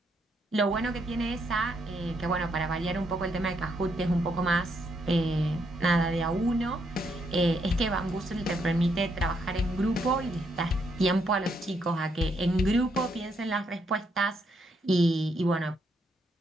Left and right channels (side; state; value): both; normal; correlation 0.76